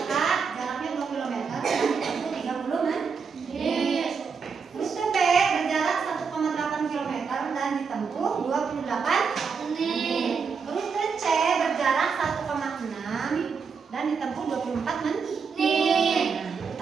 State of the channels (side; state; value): left; quieter; 5.7 dB